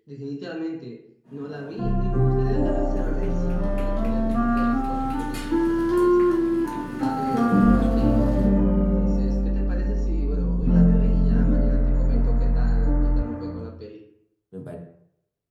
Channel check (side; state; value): both; identical; correlation 1.00